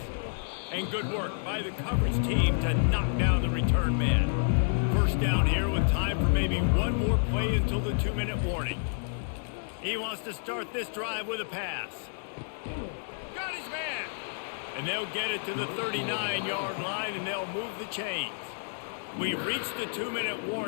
And good work by the coverage team to knock down the return man. First down here with time for maybe one more play until the 2-minute warning. He wants to start this drive with a pass. Got his man! And they'll get it to the 39-yard line and they'll move the chains. We reached the 2-minute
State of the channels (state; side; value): silent; right; digital silence